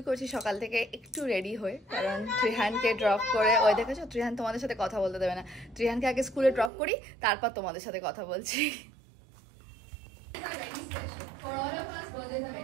করছি সকাল থেকে একটু রেডি হয়ে, কারণ ত্রিহানকে ড্রপ করে, ওই দেখেছো ত্রিহান তোমাদের সাথে কথা বলতে দেবে না। ত্রিহানকে আগে স্কুলে ড্রপ করি, তারপর তোমাদের সাথে কথা বলছি।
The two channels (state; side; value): drops out; left; at 6.7 s